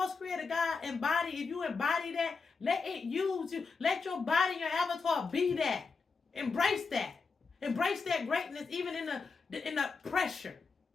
Creator God if you embody that, let it use you. Let your body, your avatar be that. Embrace that. Embrace that greatness even in the pressure.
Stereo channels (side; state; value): right; quieter; 4.7 dB